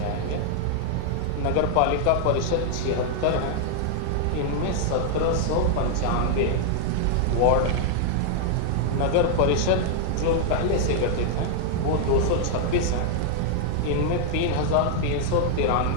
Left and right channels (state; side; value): different; both; correlation 0.00